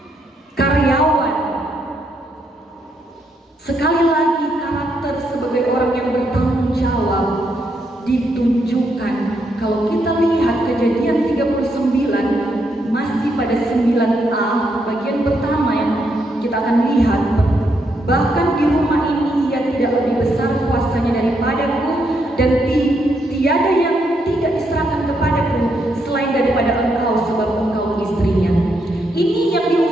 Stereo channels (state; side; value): normal; both; correlation 0.78